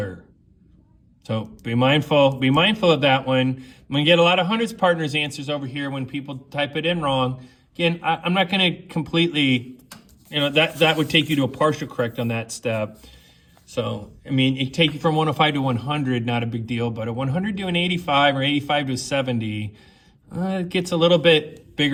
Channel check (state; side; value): identical; both; correlation 1.00